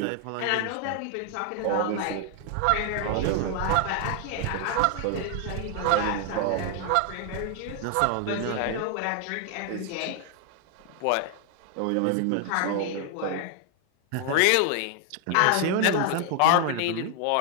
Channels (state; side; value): different; both; correlation 0.00